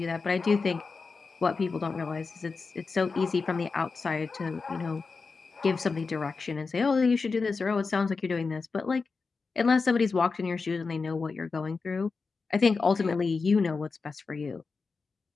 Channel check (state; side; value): quieter; right; 4.5 dB